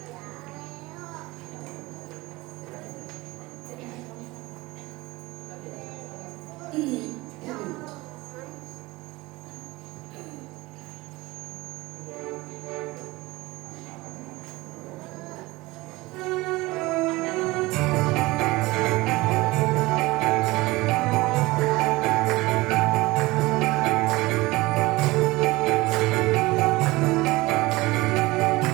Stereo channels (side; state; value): left; quieter; 20.9 dB